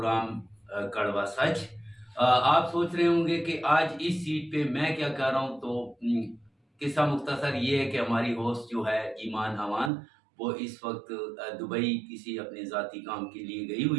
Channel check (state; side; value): drops out; left; at 9.9 s